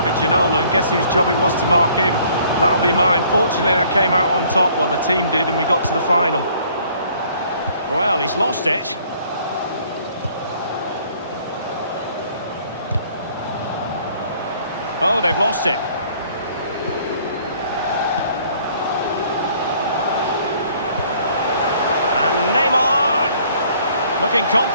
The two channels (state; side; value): inverted; both; correlation -0.59